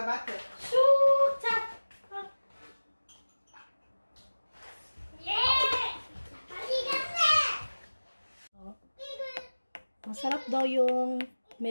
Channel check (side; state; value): both; inverted; correlation -1.00